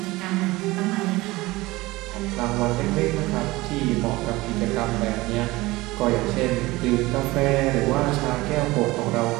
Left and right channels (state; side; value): quieter; left; 20.3 dB